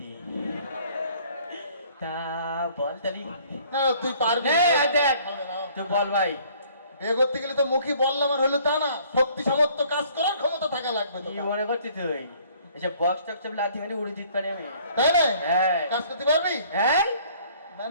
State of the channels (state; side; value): inverted; both; correlation -0.57